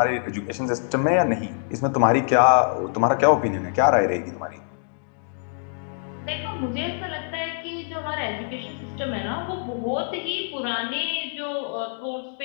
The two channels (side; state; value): right; silent; digital silence